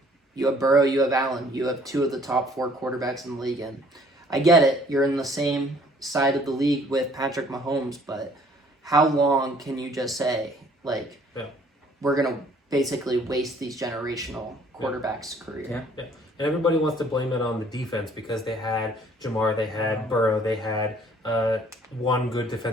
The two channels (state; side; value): normal; both; correlation 0.58